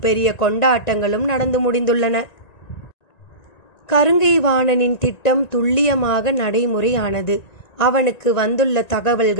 பெரிய கொண்டாட்டங்களும் நடந்து முடிந்துள்ளன. கருங்கை வாணனின் திட்டம் துல்லியமாக நடைமுறையானது. அவனுக்கு வந்துள்ள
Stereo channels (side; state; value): right; late; 1.9 ms